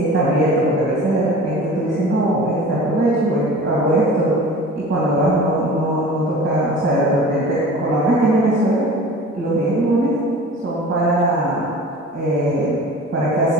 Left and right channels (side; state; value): both; normal; correlation 0.40